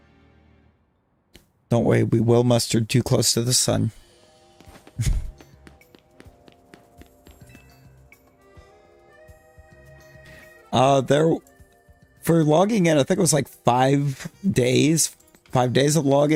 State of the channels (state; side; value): identical; both; correlation 1.00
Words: Don't worry, we will mustard too close to the sun. There, for logging in, I think it was like 5 days. 5 days of